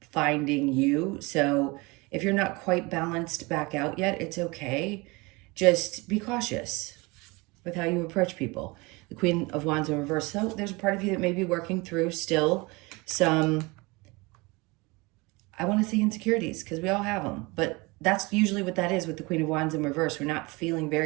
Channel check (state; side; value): quieter; left; 25.1 dB